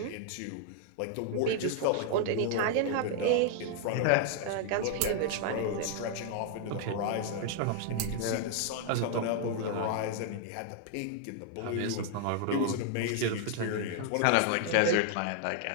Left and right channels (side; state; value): both; different; correlation 0.00